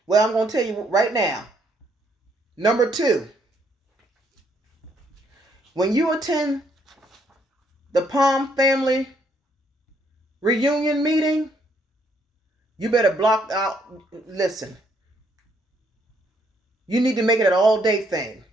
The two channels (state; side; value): normal; both; correlation 0.70